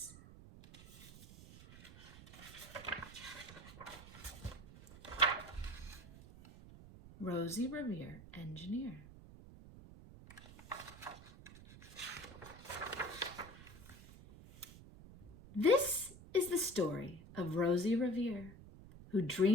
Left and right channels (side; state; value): right; noise; rumble, 17 dB below the sound